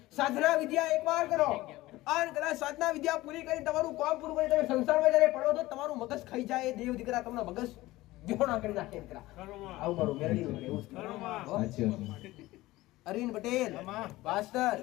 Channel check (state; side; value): quieter; right; 18.1 dB